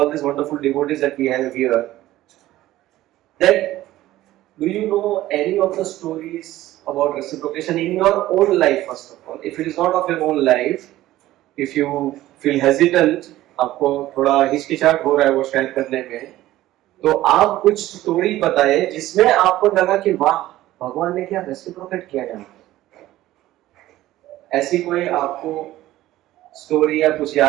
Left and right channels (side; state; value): left; quieter; 15.3 dB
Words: these wonderful devotees that we have here. That do you know any of the stories about reciprocation in your own life? First of all, if it is not of your own life, if you feel hesitant, आपको थोड़ा हिचकिचाहट हो रहा है वो share करने में, तो आप कुछ स्टोरी बताएं जिसमें आपको लगा कि वाह, भगवान ने क्या रेसिप्रोकेट किया है। ऐसी कोई आपको स्टोरी या कुछ